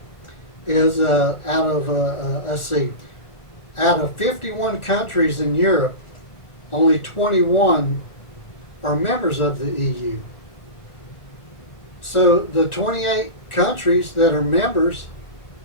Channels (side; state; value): right; late; 1.4 ms